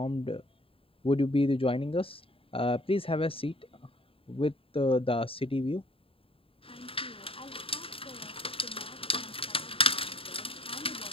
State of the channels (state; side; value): late; right; 0.27 ms